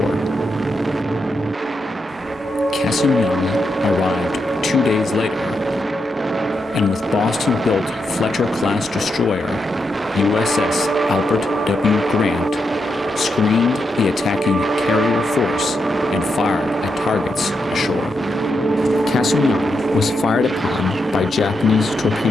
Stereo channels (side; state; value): both; normal; correlation 0.83